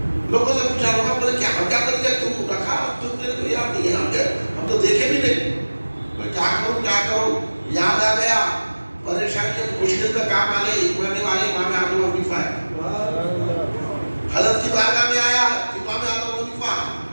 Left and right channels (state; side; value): inverted; both; correlation -1.00